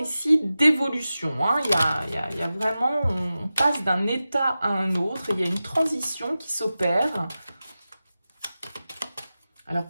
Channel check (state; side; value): inverted; both; correlation -0.94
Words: d'évolution. Il y a vraiment, on passe d'un état à un autre, il y a une transition qui s'opère. Alors